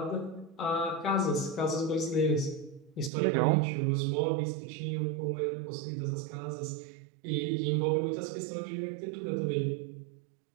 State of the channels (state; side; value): drops out; left; at 3.1 s